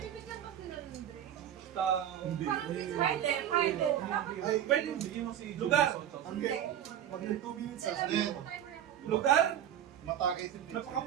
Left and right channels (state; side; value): quieter; left; 10.4 dB